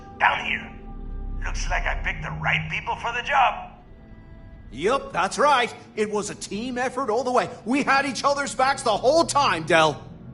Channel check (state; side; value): identical; both; correlation 1.00